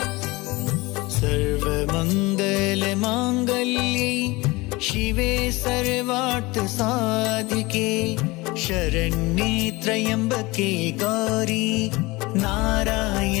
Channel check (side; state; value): right; quieter; 22.5 dB